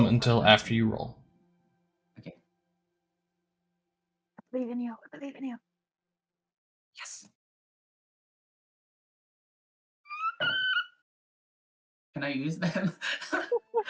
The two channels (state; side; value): identical; both; correlation 1.00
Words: all until 5. after you roll. Okay. I believe in you. I believe in you. Yes. Can I use them?